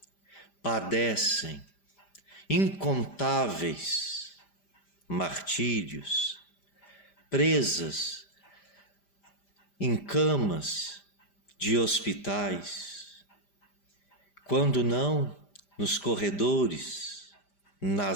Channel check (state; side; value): late; right; 5.0 ms